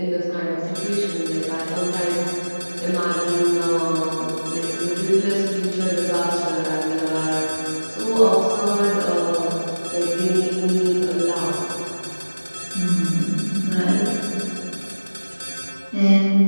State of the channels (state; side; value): inverted; both; correlation -1.00